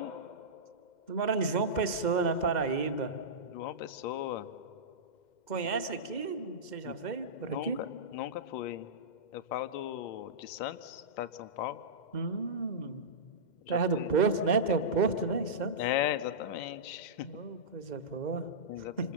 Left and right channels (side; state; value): right; late; 2.1 ms